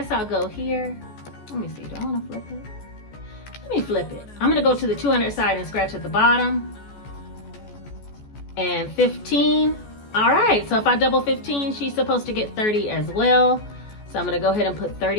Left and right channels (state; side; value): late; right; 14 ms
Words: I'll go here. Let me see, do I wanna flip it? Let me flip it. I'm gonna go to the 200 side and scratch at the bottom. And 15. All right, so if I double 15, she's supposed to get 30 as well. So I'm gonna go ahead and put